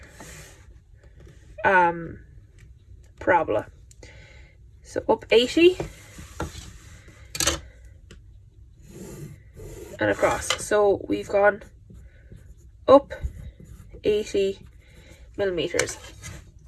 parabola. So up 80 and across. So we've gone up 80 millimeters.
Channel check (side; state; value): both; identical; correlation 1.00